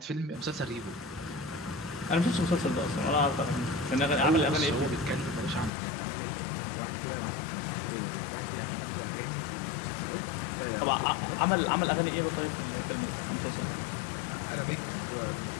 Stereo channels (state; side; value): drops out; right; at 5.7 s